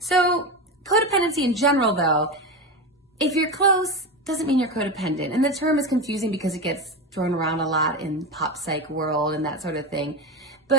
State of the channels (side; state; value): both; normal; correlation 0.19